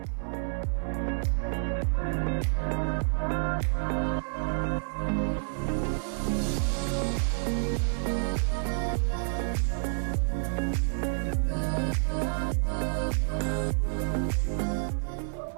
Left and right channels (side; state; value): left; silent; 55 dB below the other